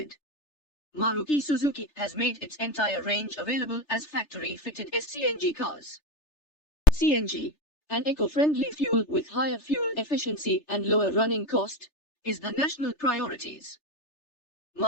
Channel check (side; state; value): right; late; 3.3 ms